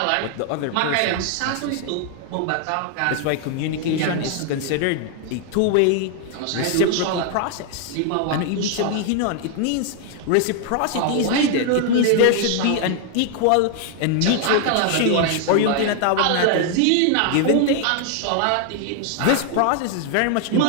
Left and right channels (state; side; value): different; both; correlation 0.00